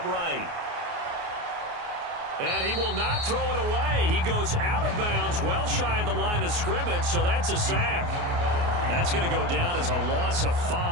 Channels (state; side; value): late; left; 29 ms